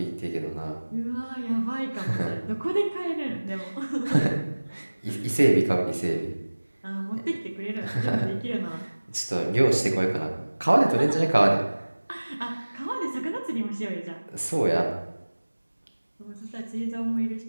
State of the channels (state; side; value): inverted; both; correlation -1.00